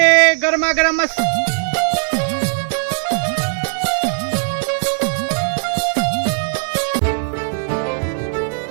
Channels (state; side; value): silent; left; digital silence